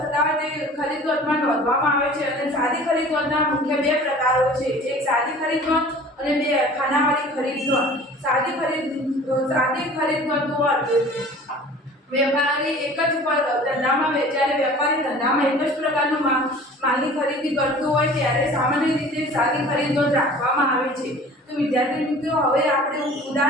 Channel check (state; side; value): normal; both; correlation 0.45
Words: થતા હોય તે ખરીદ નોંધમાં નોંધવામાં આવે છે. અને સાદી ખરીદ નોંધના મુખ્ય બે પ્રકારો છે. એક સાદી ખરીદ નોંધ અને બે ખાનાવાળી ખરીદ નોંધ. સાદી ખરીદ નોંધનો અર્થ. વેપારી એક જ ધંધામાં જ્યારે વેપારી ધંધામાં એક જ પ્રકારનો માલની ખરીદી કરતો હોય ત્યારે સામાન્ય રીતે સાદી ખરીદ નોંધ રાખવામાં આવે છે. તો વિદ્યાર્થી મિત્રો, હવે આપણે